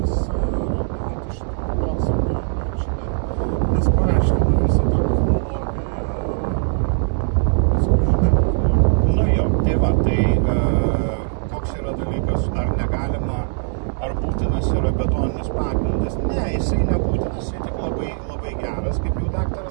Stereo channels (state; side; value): silent; left; 65 dB below the other